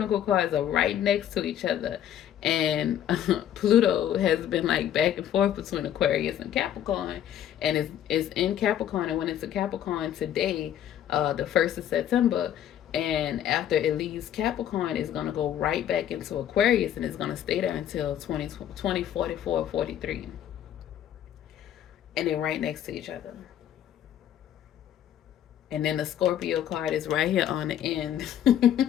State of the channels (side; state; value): right; quieter; 10.6 dB